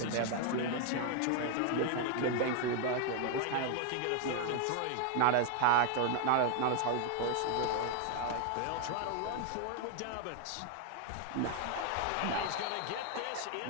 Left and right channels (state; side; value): different; both; correlation 0.01